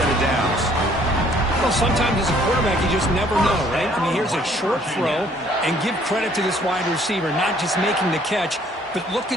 of downs. Well, sometimes as a quarterback, you just never know, right? I mean, here's a short throw, and give credit to this wide receiver, not just making the catch, but look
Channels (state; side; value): normal; both; correlation 0.60